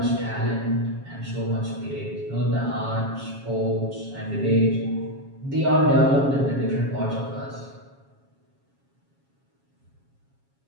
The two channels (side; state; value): left; late; 7.3 ms